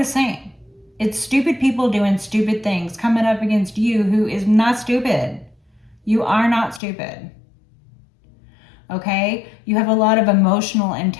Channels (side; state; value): right; drops out; at 6.8 s